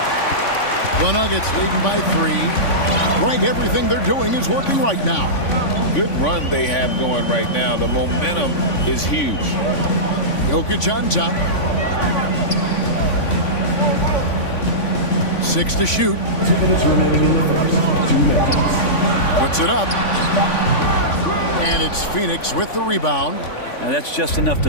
The Nuggets leading by 3. Right, everything they're doing is working right now. Good run they have going right now. The momentum is huge. Jokic on top. 6 to shoot. 2 minutes remaining in the first. 2 minutes. Puts it up. And it's Phoenix with the rebound. Now that's just enough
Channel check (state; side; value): late; right; 3.5 ms